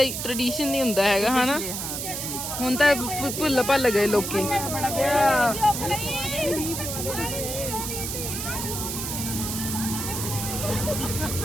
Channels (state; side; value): noise; right; hiss, 4 dB below the sound